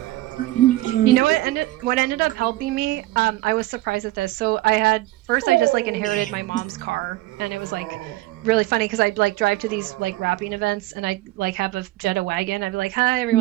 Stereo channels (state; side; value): quieter; left; 17.5 dB